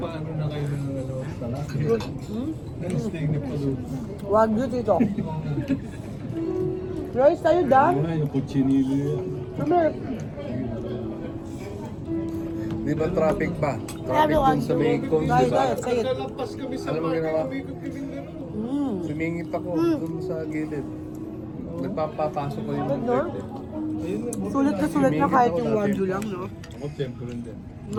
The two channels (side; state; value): both; identical; correlation 1.00